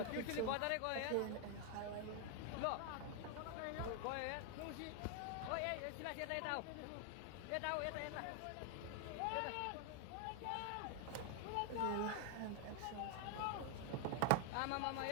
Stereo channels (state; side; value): different; both; correlation 0.00